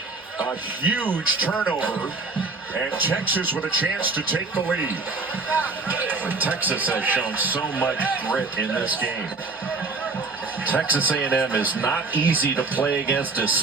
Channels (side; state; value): left; quieter; 3.9 dB